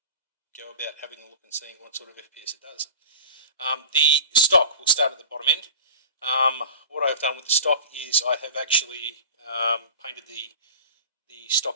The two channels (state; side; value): inverted; both; correlation -0.38